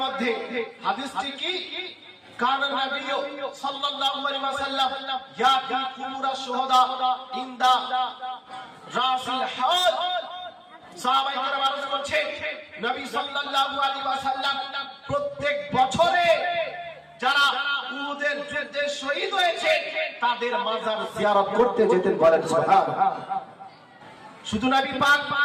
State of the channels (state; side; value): identical; both; correlation 1.00